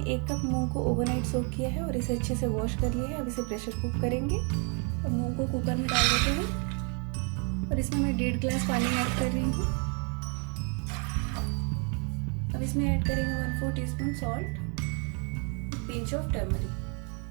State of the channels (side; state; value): left; quieter; 37.3 dB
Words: 1 कप मूंग को ओवरनाइट सोक किया है और इसे अच्छे से वॉश कर लिया है। अब इसे प्रेशर कुक करेंगे और मूंग को कुकर में डाल देते हैं और इसमें मैं 1.5 गिलास पानी ऐड कर रही हूँ। अब इसमें ऐड करेंगे 1/4 teaspoon salt, pinch of turmeric.